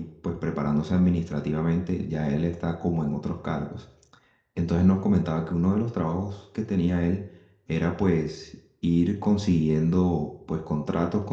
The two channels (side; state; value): both; identical; correlation 1.00